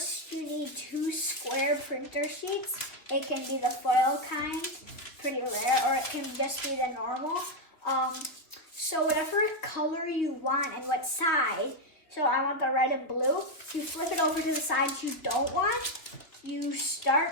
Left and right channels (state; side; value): late; right; 2.9 ms